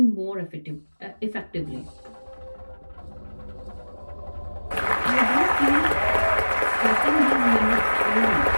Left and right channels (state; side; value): inverted; both; correlation -1.00